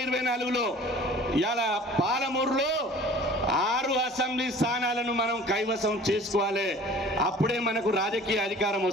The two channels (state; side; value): normal; both; correlation 0.46